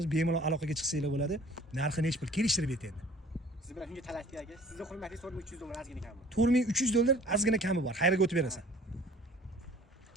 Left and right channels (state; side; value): normal; both; correlation 0.50